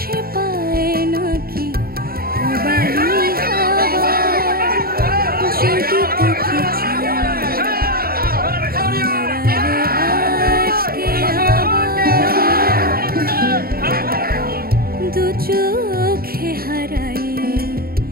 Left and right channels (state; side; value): late; left; 0.44 ms